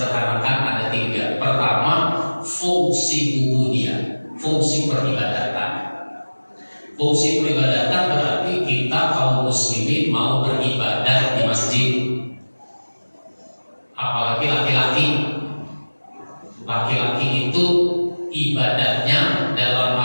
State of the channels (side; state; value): both; inverted; correlation -1.00